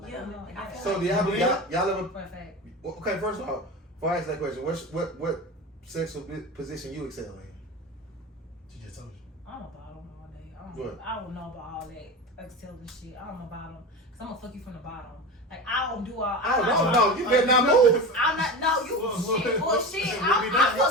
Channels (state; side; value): normal; both; correlation 0.26